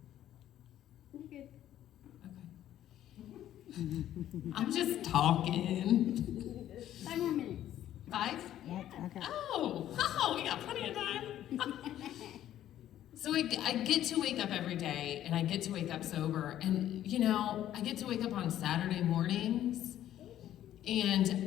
You're good. Okay. I'm just talking. 5 more minutes. 5? Okay. Oh, we got plenty of time. So I get to wake up every day, and I get to wake up sober. And, I get to wake up on Saturday mornings,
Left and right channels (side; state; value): right; quieter; 12.1 dB